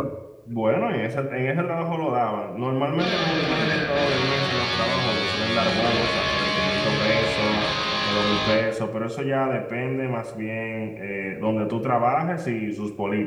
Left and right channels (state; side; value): identical; both; correlation 1.00